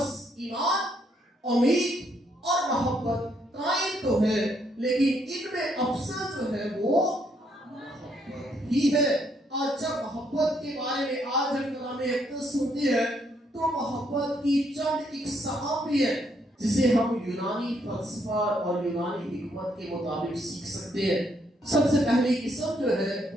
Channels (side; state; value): both; normal; correlation 0.72